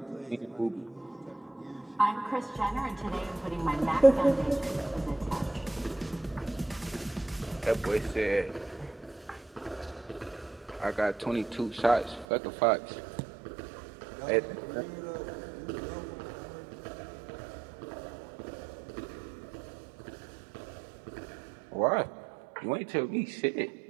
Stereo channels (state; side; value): drops out; left; at 12.2 s